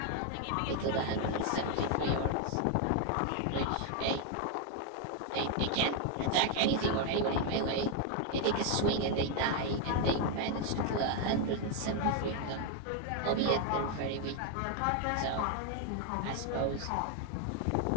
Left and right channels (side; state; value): both; different; correlation 0.01